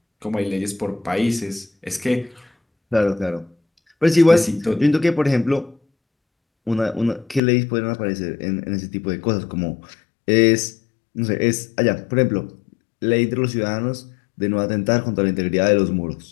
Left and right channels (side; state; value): right; drops out; at 7.4 s